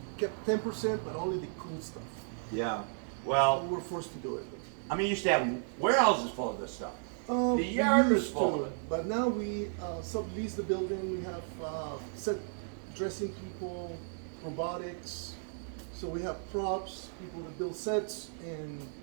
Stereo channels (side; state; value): left; silent; digital silence